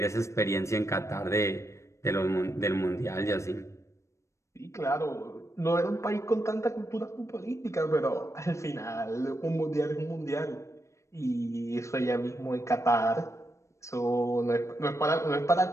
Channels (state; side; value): late; right; 0.14 ms